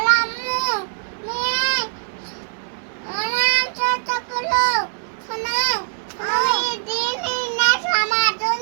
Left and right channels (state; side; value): silent; left; digital silence